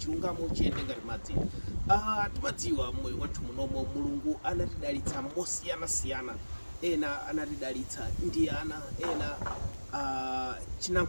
chiyende ngati madzi. Timadziwa mmoyo wathu munomo Mulungu anatidalitsa mosiyanasiyana. Ena anatidalitsa ndi ana, ena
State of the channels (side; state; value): both; inverted; correlation -1.00